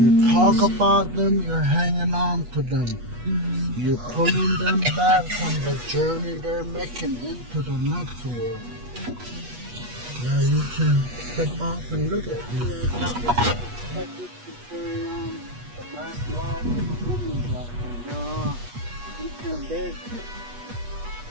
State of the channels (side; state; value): left; late; 8.3 ms